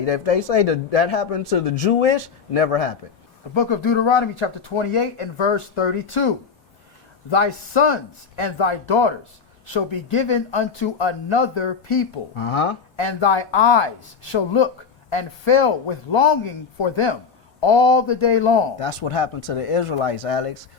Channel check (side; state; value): right; quieter; 5.8 dB